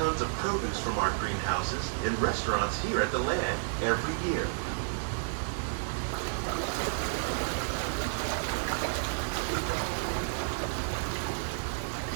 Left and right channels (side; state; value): left; silent; digital silence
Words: of produce from our greenhouses in restaurants here at the land every year.